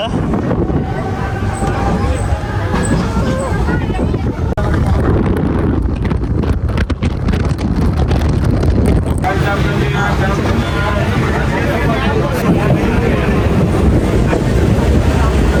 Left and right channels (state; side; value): identical; both; correlation 1.00